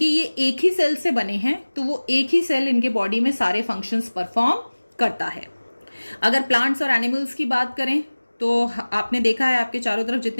ये एक ही सेल से बने हैं तो वो एक ही सेल इनके बॉडी में सारे फंक्शंस परफॉर्म करता है। अगर प्लांट्स और एनिमल्स की बात करें तो आपने देखा है आपके चारों तरफ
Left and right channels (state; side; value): inverted; both; correlation -1.00